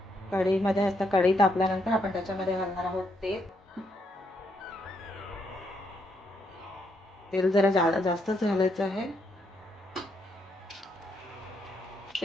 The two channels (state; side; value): normal; both; correlation 0.76